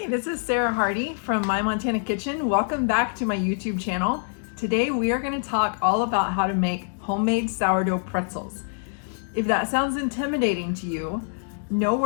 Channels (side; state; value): right; silent; digital silence